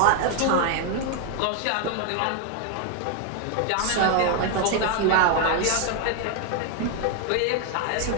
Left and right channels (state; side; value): different; both; correlation 0.00